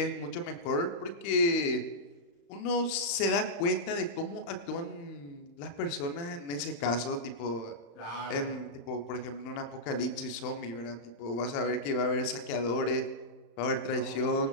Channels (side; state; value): right; late; 35 ms